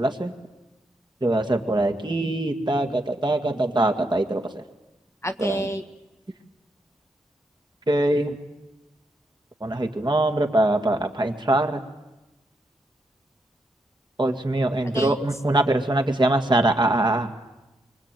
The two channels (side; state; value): both; normal; correlation 0.79